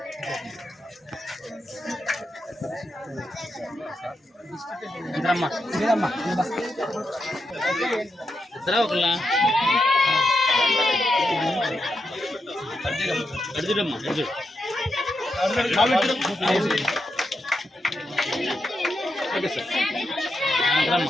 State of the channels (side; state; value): both; normal; correlation 0.85